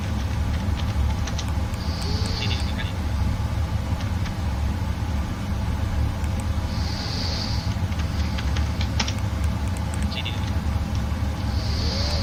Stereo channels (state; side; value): identical; both; correlation 1.00